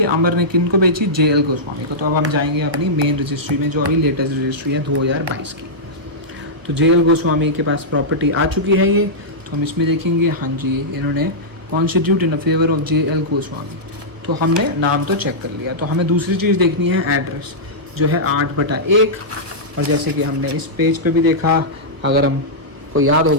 अमर ने किन को बेची? JL गोस्वामी को। तो अब हम जाएंगे अपनी मेन रजिस्ट्री में, जो अभी लेटेस्ट रजिस्ट्री है 2022 की। तो JL गोस्वामी के पास प्रॉपर्टी आ चुकी है ये, तो हम इसमें देखेंगे, हाँ जी इन्होंने constitute in favour of JL Goswami. तो हमने नाम तो चेक कर लिया, तो हमें दूसरी चीज़ देखनी है एड्रेस, जो है 8/1। और जैसे कि हमने इस पेज पे भी देखा, अगर हमको याद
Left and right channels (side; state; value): left; late; 1.1 ms